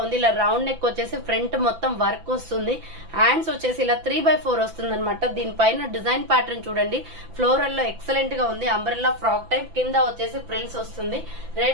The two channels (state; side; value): late; left; 6.0 ms